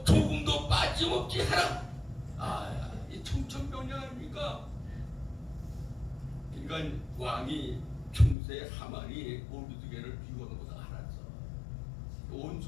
조금도 빠짐없이 하라. 이 청천벽력 아닙니까? 그러니까 왕이 평소에 하만이 모르드게를 비우는 것을 알았어.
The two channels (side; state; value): right; drops out; at 8.3 s